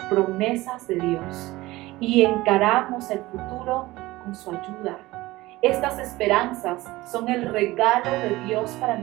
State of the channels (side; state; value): left; quieter; 19.0 dB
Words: promesas de Dios y encaramos el futuro con su ayuda. Estas esperanzas son el regalo de Dios para